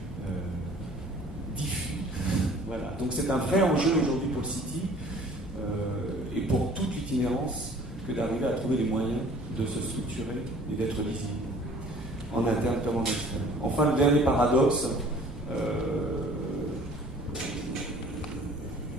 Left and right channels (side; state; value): both; normal; correlation 0.51